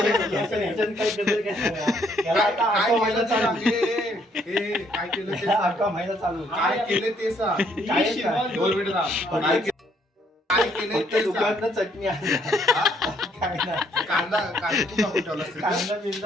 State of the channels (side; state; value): both; normal; correlation 0.68